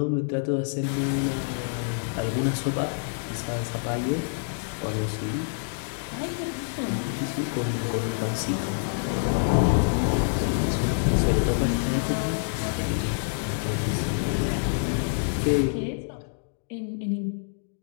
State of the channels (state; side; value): silent; right; digital silence